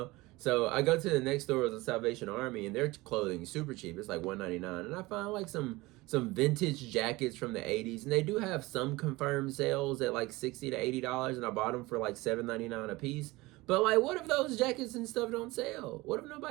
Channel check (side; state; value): left; quieter; 21.0 dB